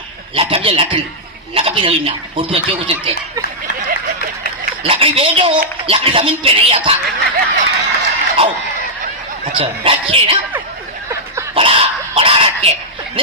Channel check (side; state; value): both; normal; correlation -0.07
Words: लकड़ी ना उर्दू अच्छे को सकते लकड़ी भेजो लकड़ी जमीन पे नहीं आता। आओ अच्छा रखिए ना बड़ा रखे।